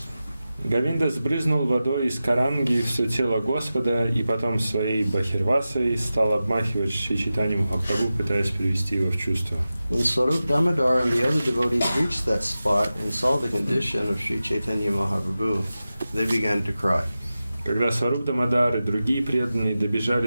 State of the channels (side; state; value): both; inverted; correlation -0.94